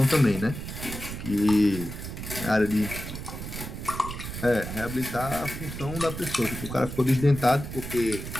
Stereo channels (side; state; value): right; noise; rumble, 8 dB below the sound